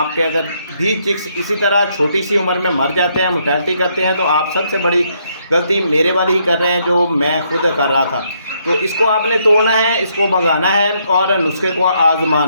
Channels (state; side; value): inverted; both; correlation -0.73